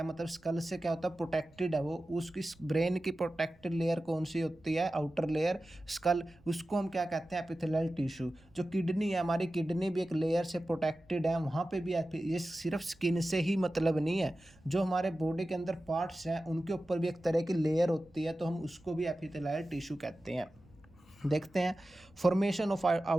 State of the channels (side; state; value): right; noise; rumble, 28 dB below the sound